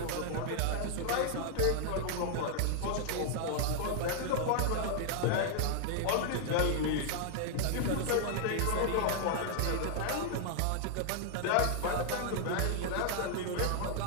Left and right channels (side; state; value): both; different; correlation -0.01